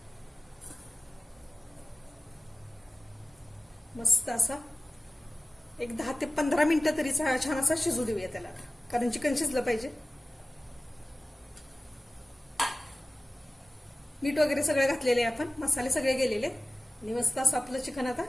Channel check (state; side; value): normal; both; correlation 0.97